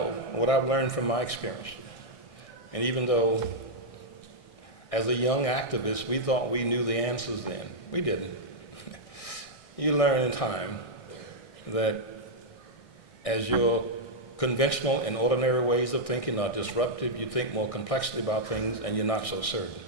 what I've learned from my experience, and even though as a young activist we thought we knew the answers then, we didn't. You learn in time that as your conventional and ordinary ways of thinking are disrupted, you think more complexly about things and you're not so certain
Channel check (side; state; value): right; late; 1.6 ms